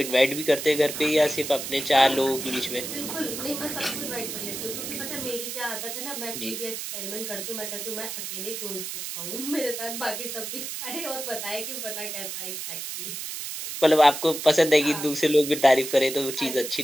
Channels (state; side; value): noise; right; hiss, 6 dB below the sound